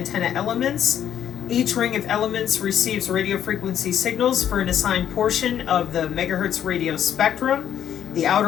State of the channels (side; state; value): right; quieter; 9.9 dB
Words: elements. Each ring of elements receives radio frequency signals for an assigned portion of the megahertz radio spectrum. The